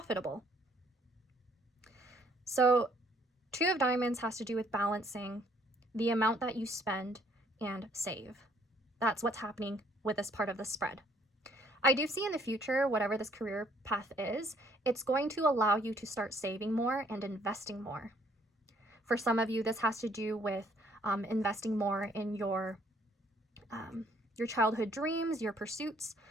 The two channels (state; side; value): normal; both; correlation 0.64